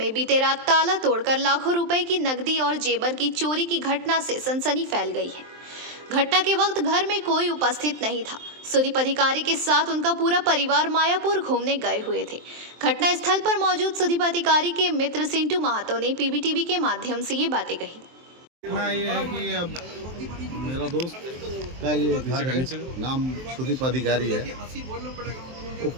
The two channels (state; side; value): late; left; 23 ms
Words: बीते रात ताला तोड़कर लाखों रुपए की नकदी और जेवर की चोरी की घटना से सनसनी फैल गई है। घटना के वक्त घर में कोई उपस्थित नहीं था। सुदीप अधिकारी के साथ उनका पूरा परिवार मायापुर घूमने गए हुए थे। घटना स्थल पर मौजूद सुदीप अधिकारी के मित्र सिंटू महातो ने पीबीटीवी के माध्यम से ये बातें कही। ये है कि अब मेरा दोस्त का ये घर है, नाम सुदीप अधिकारी है। वो